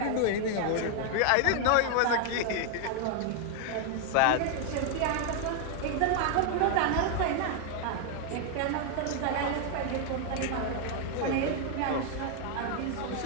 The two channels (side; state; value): both; different; correlation 0.00